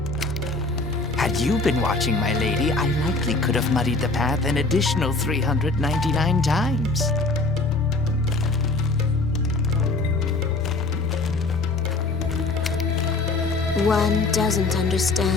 Had you been watching, my lady, I likely could have muddied the path an additional 399 times. One doesn't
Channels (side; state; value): right; quieter; 3.3 dB